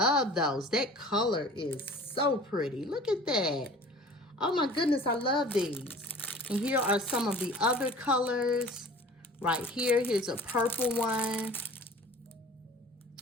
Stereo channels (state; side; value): normal; both; correlation 0.44